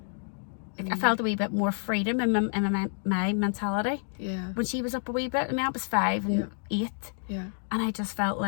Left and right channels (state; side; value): silent; right; 59 dB below the other